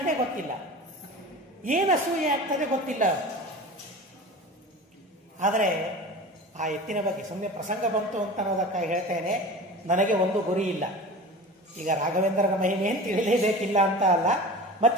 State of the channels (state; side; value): normal; both; correlation 0.35